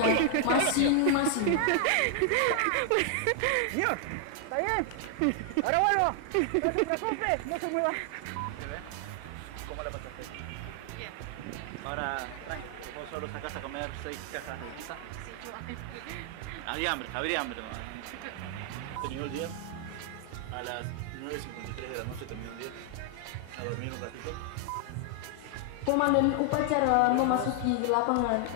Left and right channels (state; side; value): different; both; correlation 0.00